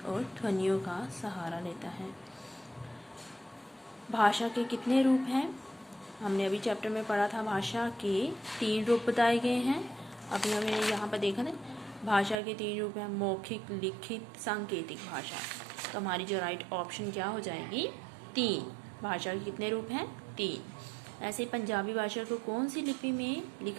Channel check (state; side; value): drops out; left; at 12.4 s